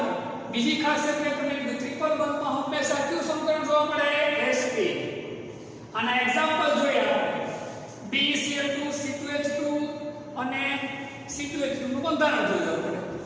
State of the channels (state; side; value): identical; both; correlation 1.00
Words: બીજી ખાસિયત મેં તમને કીધું ટ્રિપલ બંધમાં હંમેશા કયું સંકરણ જોવા મળે? sp. આના એક્ઝામ્પલ જોયા BeCl2 C2H2 અને C2H2 નું બંધારણ જોયું આપણે.